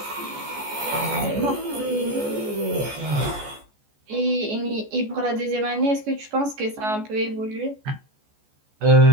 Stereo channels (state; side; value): late; left; 14 ms